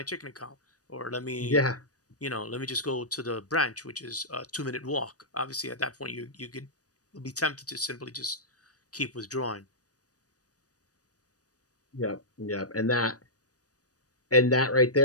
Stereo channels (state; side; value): late; right; 0.67 ms